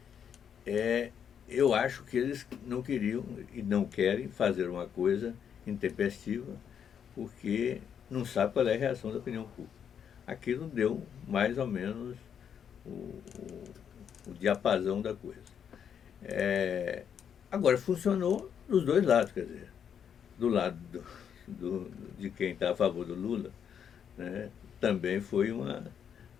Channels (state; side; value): quieter; right; 8.1 dB